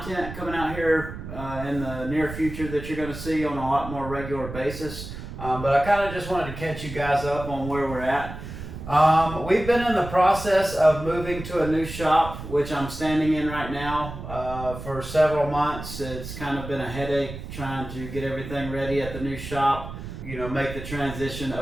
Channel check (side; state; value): right; noise; rumble, 10 dB below the sound